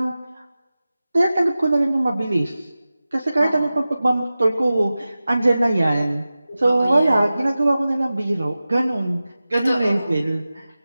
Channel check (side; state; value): both; inverted; correlation -0.95